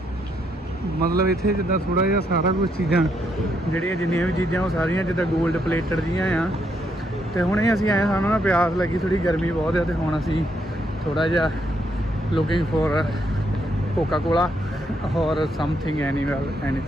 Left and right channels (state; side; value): normal; both; correlation 0.76